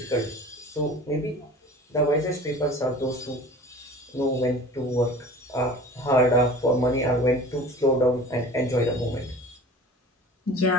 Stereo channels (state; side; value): normal; both; correlation 0.41